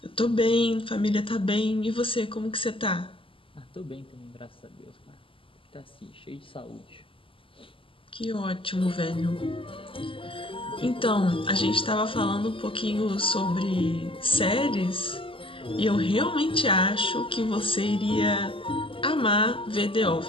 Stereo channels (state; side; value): late; right; 0.26 ms